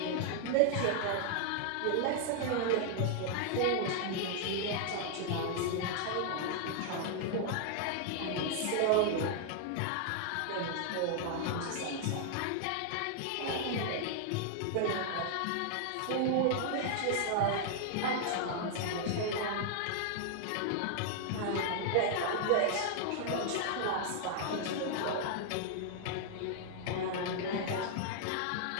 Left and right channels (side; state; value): both; different; correlation 0.00